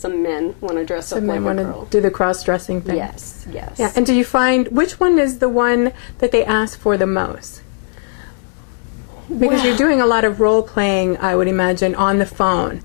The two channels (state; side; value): silent; right; digital silence